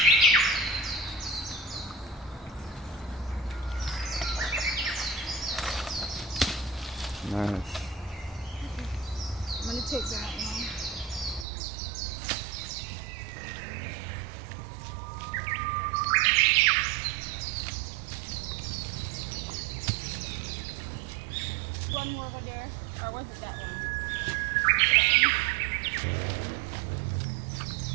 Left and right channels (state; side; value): drops out; left; at 11.5 s